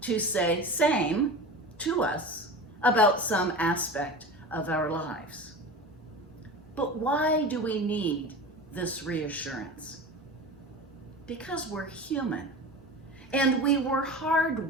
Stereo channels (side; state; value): both; normal; correlation 0.31